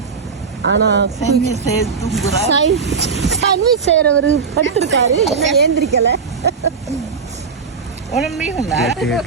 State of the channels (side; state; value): left; quieter; 5.4 dB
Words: ஆனால் சாண்ட்விச் செய்யறவர் படுத்திருக்காரு, என்ன ஏந்திரிக்கல.